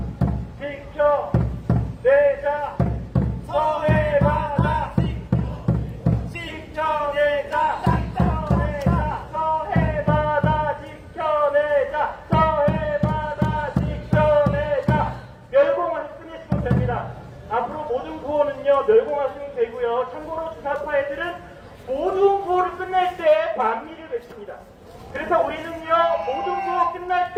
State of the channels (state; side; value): identical; both; correlation 1.00